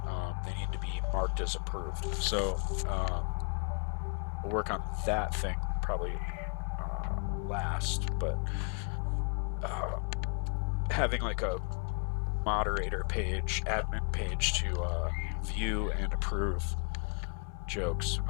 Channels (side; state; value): right; quieter; 36.6 dB